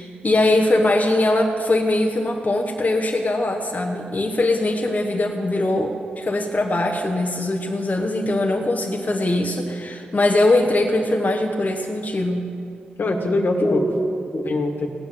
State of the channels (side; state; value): both; normal; correlation 0.88